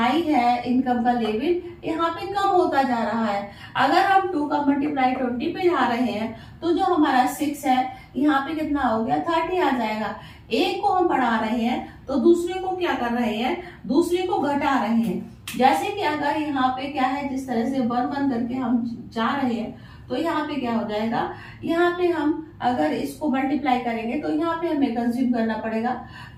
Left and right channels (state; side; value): identical; both; correlation 1.00